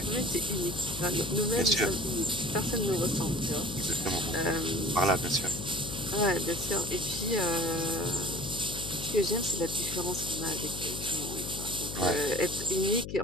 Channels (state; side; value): noise; left; hum, 8 dB below the sound